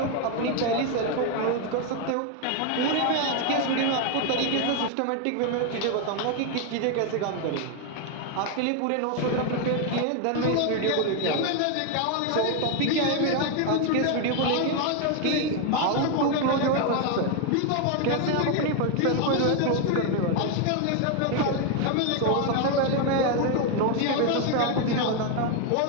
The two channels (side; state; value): both; different; correlation 0.01